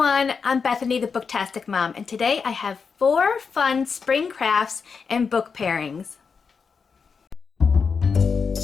I'm Bethany the Booktastic Mom, and today I have 4 fun spring crafts and book pairings.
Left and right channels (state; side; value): quieter; right; 5.6 dB